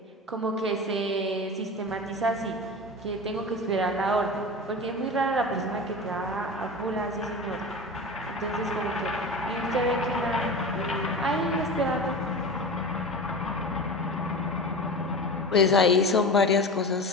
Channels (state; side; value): normal; both; correlation 0.30